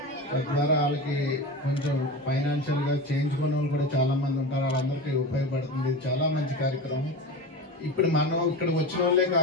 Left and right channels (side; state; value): both; normal; correlation 0.27